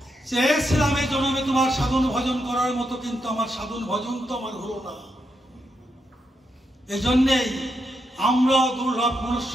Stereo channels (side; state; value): both; normal; correlation 0.82